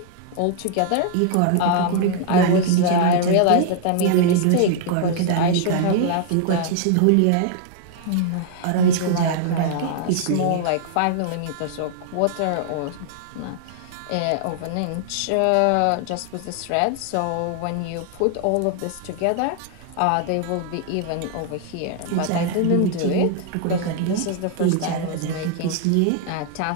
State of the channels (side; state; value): both; different; correlation 0.00